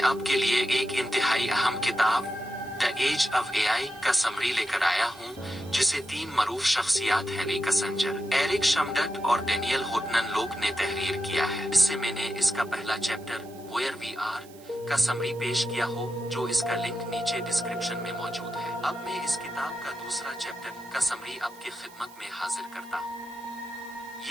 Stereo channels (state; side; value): noise; right; hiss, 23 dB below the sound